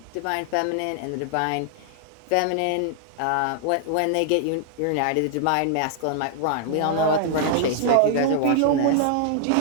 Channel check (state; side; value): different; both; correlation -0.01